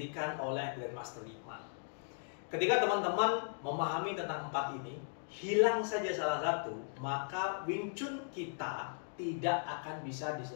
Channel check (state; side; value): silent; right; digital silence